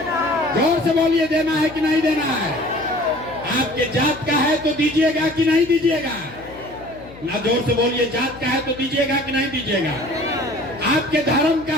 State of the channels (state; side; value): noise; left; hum, 18 dB below the sound